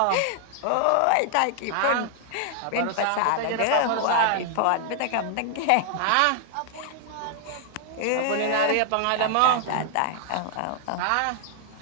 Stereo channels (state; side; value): different; both; correlation 0.00